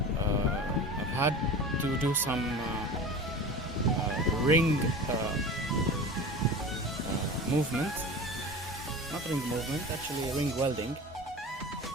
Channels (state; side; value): normal; both; correlation 0.34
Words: I've had to do some ring movement, not ring movement, actually ring welding.